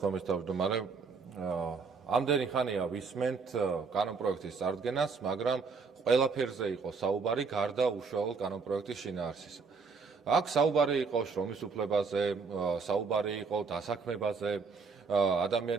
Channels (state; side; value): quieter; left; 4.9 dB